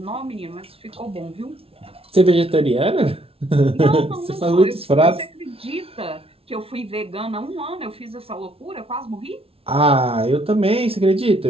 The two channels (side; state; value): left; late; 0.27 ms